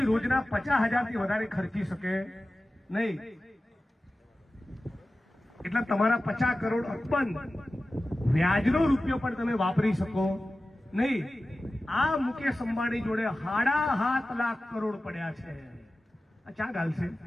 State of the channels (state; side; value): normal; both; correlation 0.95